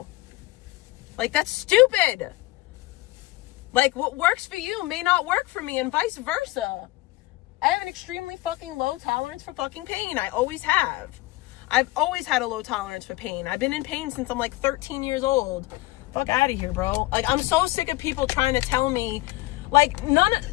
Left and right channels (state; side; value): quieter; right; 19.4 dB